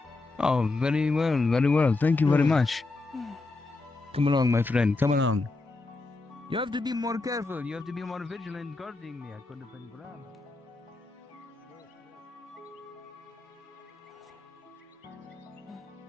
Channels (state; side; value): quieter; right; 3.4 dB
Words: Oh, very well, very well. Thank you very much. Come along, my friend. Come along. You have to be more careful. You have to be more vigilant guarding me. I could have been grabbed.